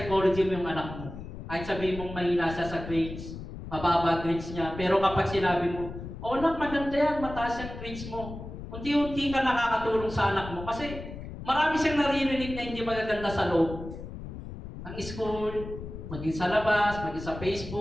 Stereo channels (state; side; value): noise; left; rumble, 10 dB below the sound